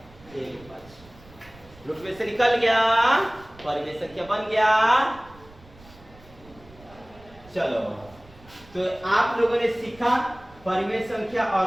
1/5, रूट में से निकल गया, परिमेय संख्या बन गया। चलो तो आप लोगों ने सीखा परिमेय संख्या और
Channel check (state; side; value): noise; right; rumble, 23 dB below the sound